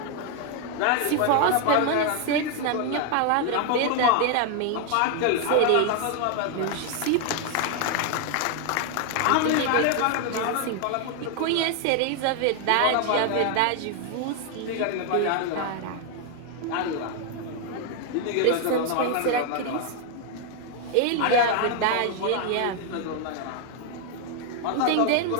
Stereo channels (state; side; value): different; both; correlation 0.00